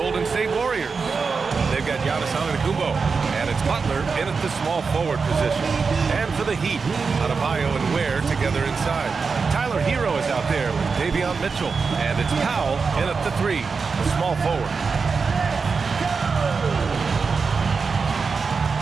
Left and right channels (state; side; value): quieter; left; 5.0 dB